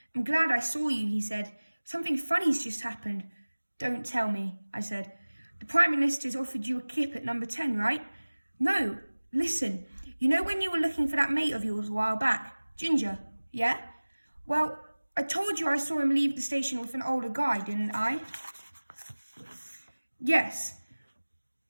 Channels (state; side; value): inverted; both; correlation -1.00